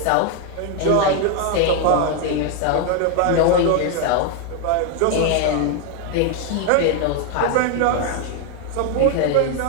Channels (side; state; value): both; different; correlation 0.01